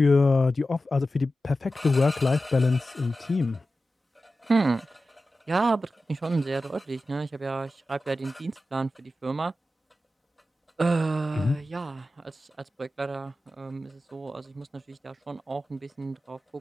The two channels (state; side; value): normal; both; correlation 0.93